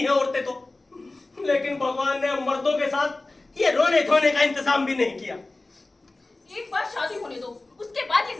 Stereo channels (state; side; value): quieter; right; 3.1 dB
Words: औरतें तो, लेकिन भगवान ने मर्दों के साथ ये रोने धोने का इंतजाम भी नहीं किया। एक बार शादी होने दो, उसके बाद ये